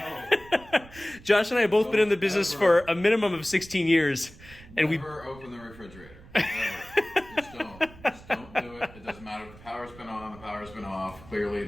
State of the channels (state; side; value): noise; right; rumble, 20 dB below the sound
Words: Josh and I have both been in the business for a minimum of 16 years. And Never open the refrigerator. Just don't do it. matter if the power's been on, the power's been off. Clearly